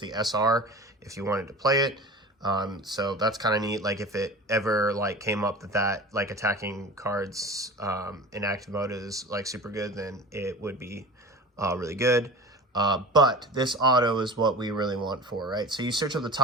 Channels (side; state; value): both; normal; correlation 0.36